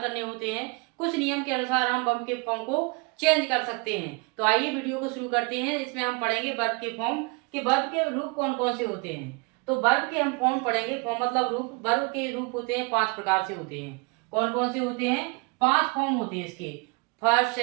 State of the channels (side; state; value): left; quieter; 30.1 dB